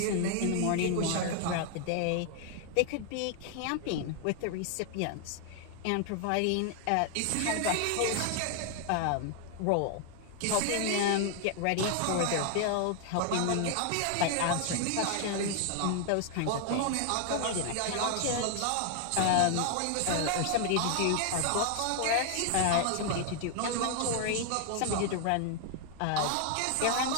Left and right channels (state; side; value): different; both; correlation 0.00